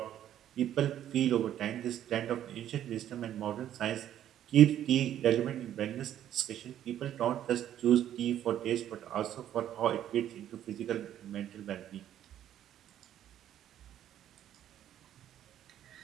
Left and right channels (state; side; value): quieter; left; 11.2 dB